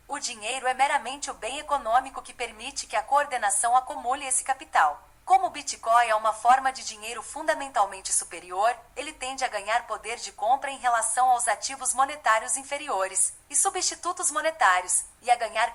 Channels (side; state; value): both; identical; correlation 1.00